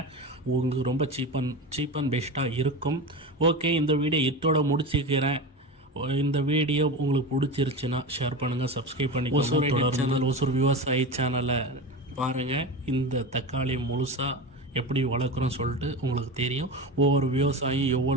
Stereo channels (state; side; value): normal; both; correlation 0.25